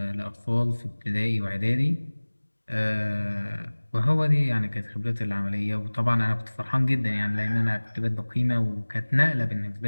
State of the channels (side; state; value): both; inverted; correlation -1.00